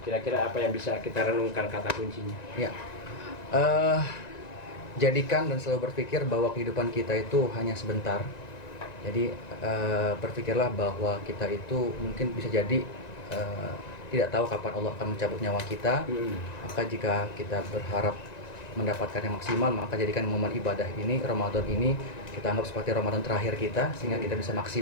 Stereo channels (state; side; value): late; right; 1.9 ms